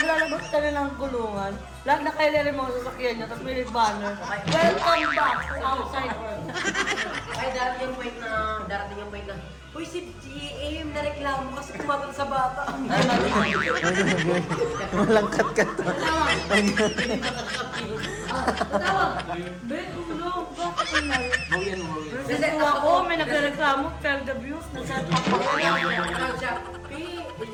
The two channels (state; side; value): identical; both; correlation 1.00